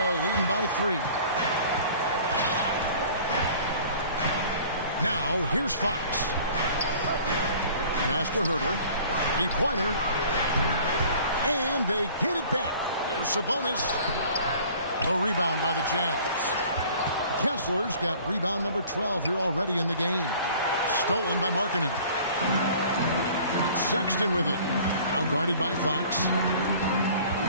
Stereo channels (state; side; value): inverted; both; correlation -0.49